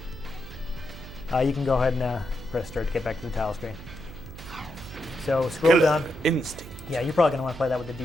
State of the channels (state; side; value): noise; right; hum, 14 dB below the sound